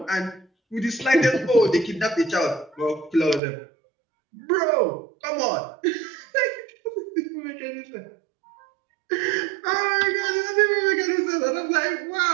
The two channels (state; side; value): drops out; left; at 3.4 s